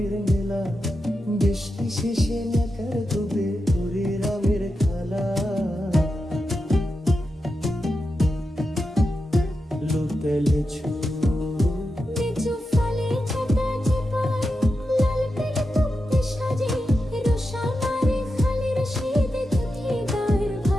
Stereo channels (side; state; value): both; normal; correlation 0.89